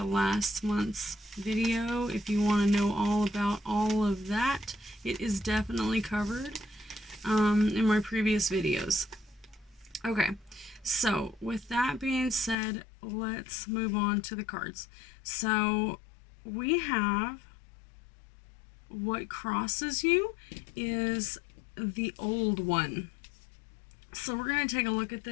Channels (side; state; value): right; drops out; at 12.6 s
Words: last month's video if you want to know all about all of that. It is definitely covered in my previous videos. Okay, so with that being said, let's move on to the cards. So we have what crosses you is the old one. So we're going to take a look at